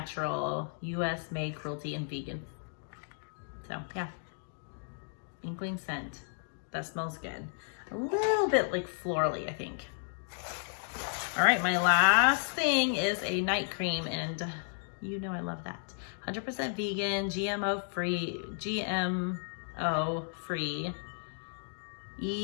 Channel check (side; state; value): right; silent; digital silence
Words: US made, cruelty and vegan. So yeah, Inkling scent. That smells good. A little bit like florally, I think. All right, my last thing is a night cream, and you know I love that. 100% vegan, GMO free,